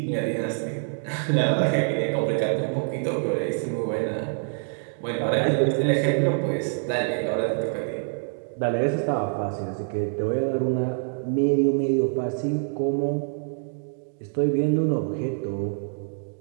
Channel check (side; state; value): left; silent; digital silence